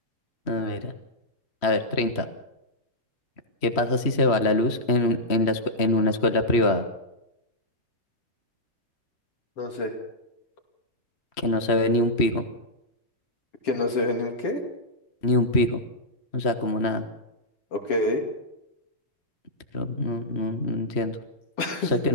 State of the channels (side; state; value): right; late; 3.1 ms